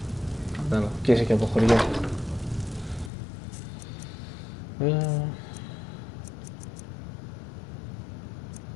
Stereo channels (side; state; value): right; drops out; at 3.1 s